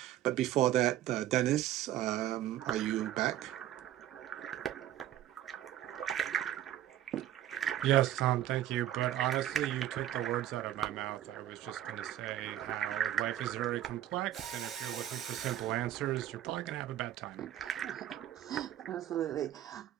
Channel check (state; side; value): quieter; left; 12.4 dB